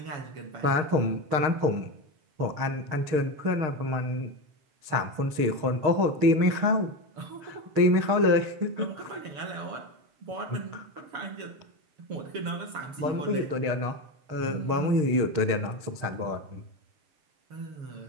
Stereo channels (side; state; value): left; late; 6.5 ms